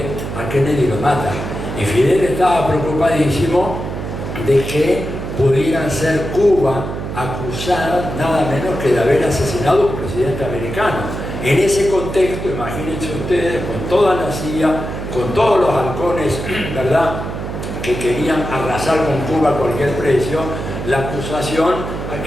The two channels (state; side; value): noise; right; hum, 6 dB below the sound